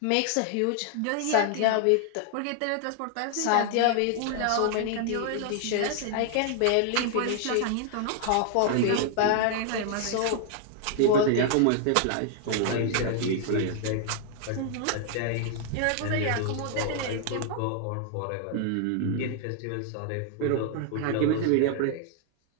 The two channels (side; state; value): both; different; correlation 0.00